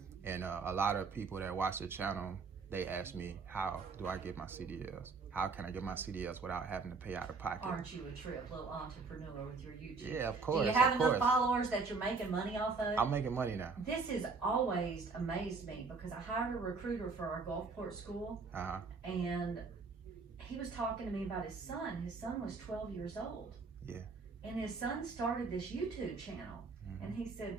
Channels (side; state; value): left; quieter; 4.4 dB